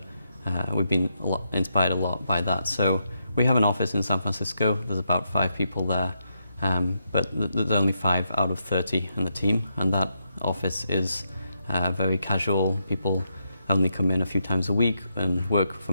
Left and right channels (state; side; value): inverted; both; correlation -0.82